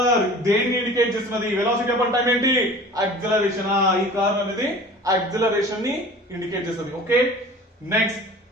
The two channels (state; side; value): normal; both; correlation 0.42